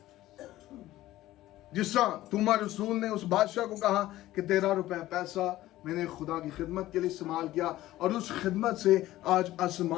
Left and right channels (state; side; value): quieter; right; 15.5 dB